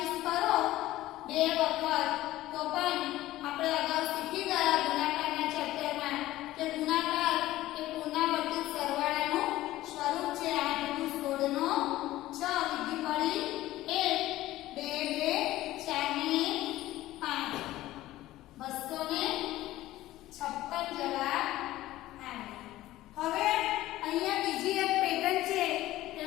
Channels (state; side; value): quieter; right; 15.8 dB